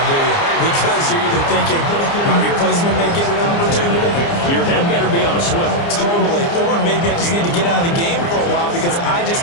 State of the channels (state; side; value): late; right; 29 ms